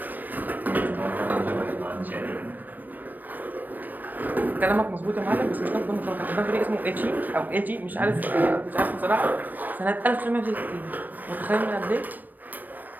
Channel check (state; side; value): late; left; 0.088 ms